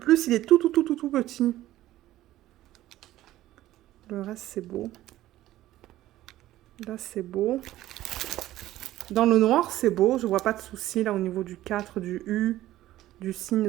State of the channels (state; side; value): quieter; left; 14.8 dB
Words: il est tout petit. Le reste, c'est beau. Là, c'est beau. Dans le noir, c'est beau. Je vois pas de souci là au niveau du 4, du U, du signe